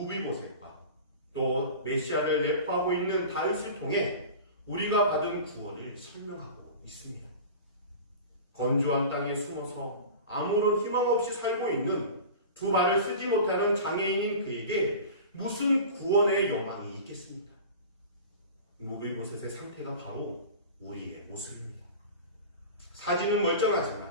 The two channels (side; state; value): both; inverted; correlation -0.35